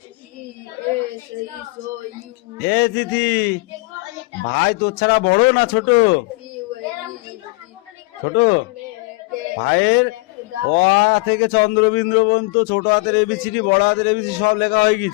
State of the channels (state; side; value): quieter; right; 26.3 dB